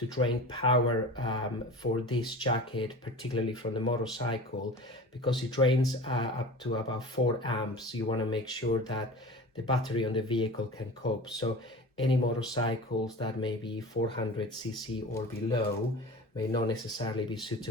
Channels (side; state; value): both; normal; correlation 0.36